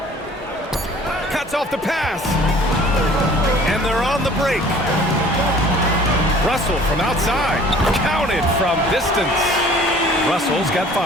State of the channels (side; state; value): both; normal; correlation 0.50